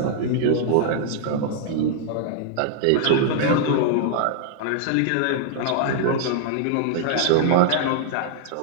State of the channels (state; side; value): different; both; correlation -0.01